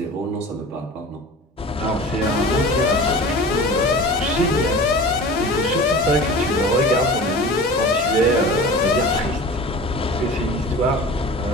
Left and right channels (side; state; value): both; normal; correlation 0.37